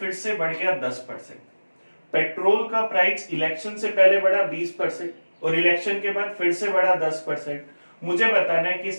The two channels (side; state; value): both; inverted; correlation -1.00